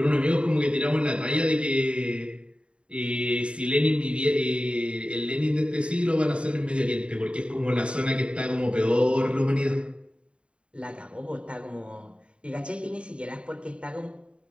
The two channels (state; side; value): late; left; 0.057 ms